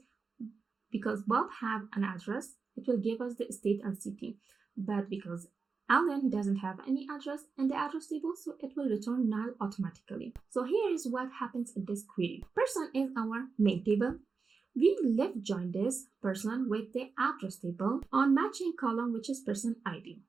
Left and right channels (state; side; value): quieter; left; 4.8 dB